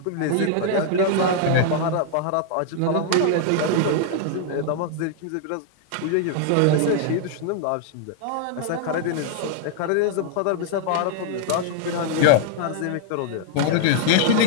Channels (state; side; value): different; both; correlation 0.00